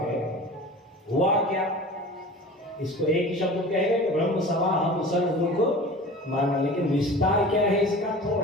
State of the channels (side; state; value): both; normal; correlation 0.38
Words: हुआ क्या, इसको एक ही शब्द कहेगा कि ब्रह्म सभा हम सर्व दुख माना, लेकिन विस्तार क्या है इसका,